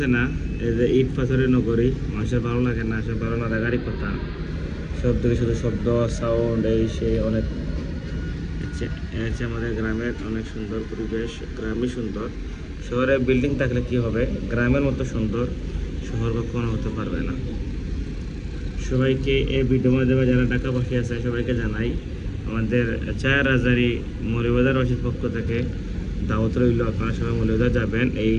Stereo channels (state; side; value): identical; both; correlation 1.00